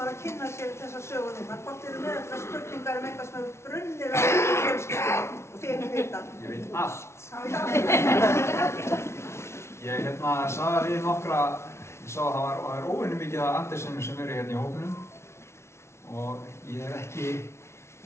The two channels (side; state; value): right; late; 0.13 ms